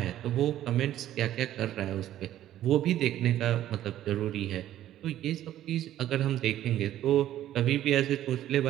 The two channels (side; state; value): left; quieter; 12.6 dB